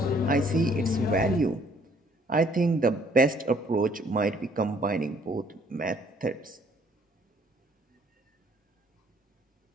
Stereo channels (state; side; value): normal; both; correlation 0.62